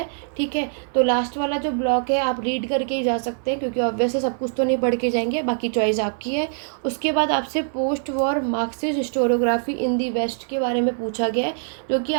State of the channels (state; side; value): silent; left; 63 dB below the other